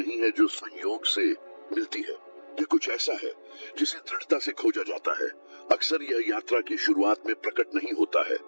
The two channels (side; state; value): both; inverted; correlation -1.00